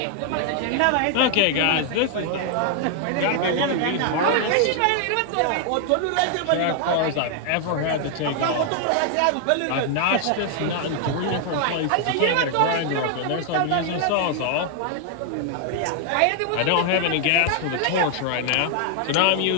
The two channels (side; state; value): both; different; correlation 0.00